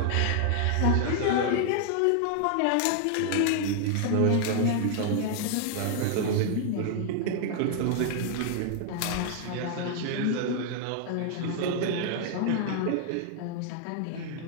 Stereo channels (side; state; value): both; different; correlation 0.00